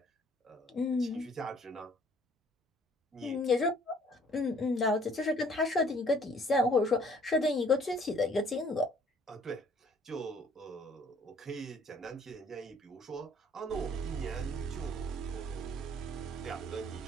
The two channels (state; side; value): normal; both; correlation 0.59